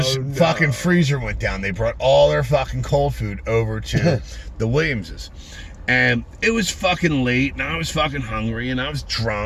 fucking freezer went down. They brought all their fucking cold food over to the Williamses. And it was fucking late, and I was fucking hungry, and I was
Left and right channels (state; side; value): identical; both; correlation 1.00